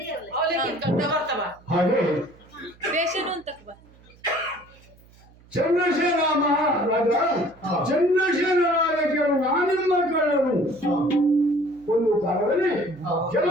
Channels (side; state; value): right; noise; hum, 27 dB below the sound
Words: ಬರ್ತಾವ ಹಾಗೆ ರೇಷನ್ ಅಂತ ಚಂದ್ರಶೇಖರ ಮಹಾರಾಜ ಚಂದ್ರಶೇಖರ ರಾಜಕೀಯರು ನಾನಿಮ್ಮ ಕಳ್ಳರು ಒಂದು ಕಾಲದಲ್ಲಿ